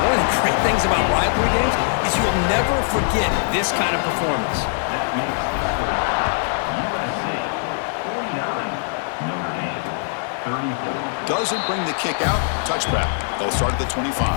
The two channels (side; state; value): right; silent; digital silence